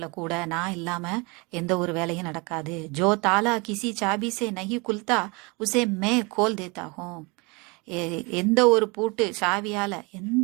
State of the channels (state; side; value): quieter; left; 27.9 dB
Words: கூட நான் இல்லாம எந்த ஒரு வேலையும் நடக்காது. ஜோ தாலா கிசி சாபி சே நஹி குல்தா உசே மே கோல் தேத்தா ஹூம். எந்த